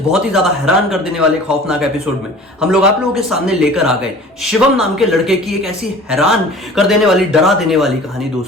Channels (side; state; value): both; normal; correlation 0.44